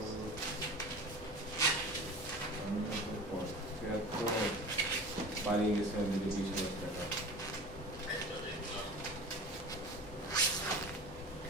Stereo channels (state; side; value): normal; both; correlation 0.35